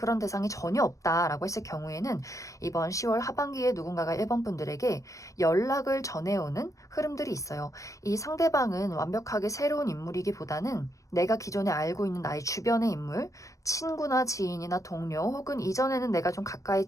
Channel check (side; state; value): right; late; 0.16 ms